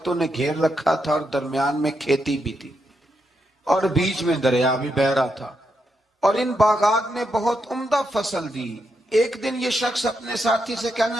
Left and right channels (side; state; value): both; normal; correlation 0.82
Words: نے گھیر رکھا تھا، اور درمیان میں کھیتی بھی تھی اور بیچ میں دریا بھی بہہ رہا تھا، اور ان باغات نے بہت عمدہ فصل دی۔ ایک دن یہ شخص اپنے ساتھی سے